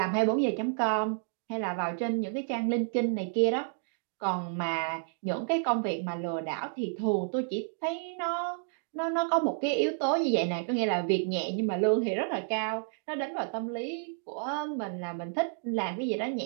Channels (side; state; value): left; silent; digital silence